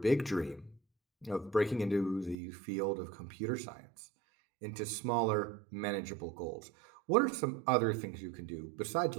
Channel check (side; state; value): left; drops out; at 2.4 s